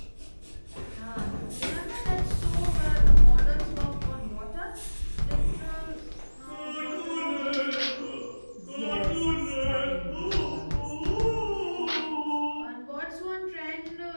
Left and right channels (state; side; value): inverted; both; correlation -1.00